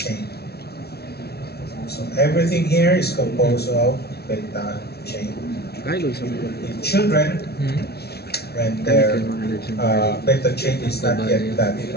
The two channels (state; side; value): late; right; 0.46 ms